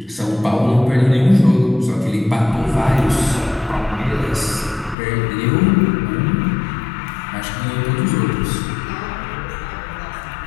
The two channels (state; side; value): drops out; right; at 5.0 s